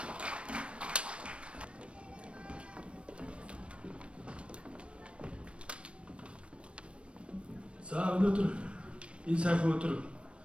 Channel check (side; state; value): left; late; 0.059 ms